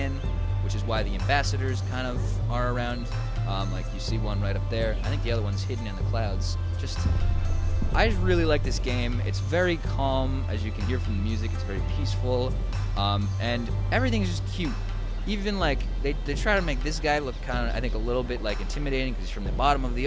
which is why the ambassadors kind of are around. Like you see one right up there. I think the other one's hidden in the clouds. I just really like this game. It's very calm, as you can hear from the music. It's very peaceful, and everything's just cute. Even like they try to make this guy look kind of, I think, a little bit like intimidating because he's from the bottom of the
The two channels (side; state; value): both; identical; correlation 1.00